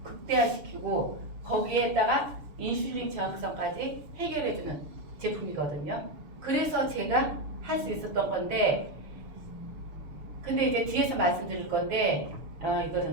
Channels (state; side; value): late; left; 7.0 ms